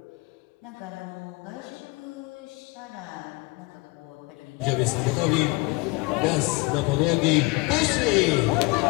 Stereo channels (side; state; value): right; quieter; 24.5 dB